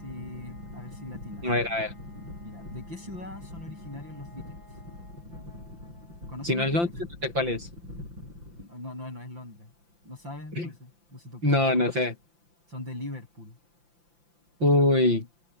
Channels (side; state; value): left; late; 5.8 ms